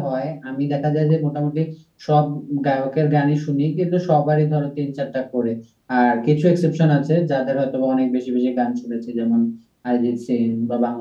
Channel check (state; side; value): identical; both; correlation 1.00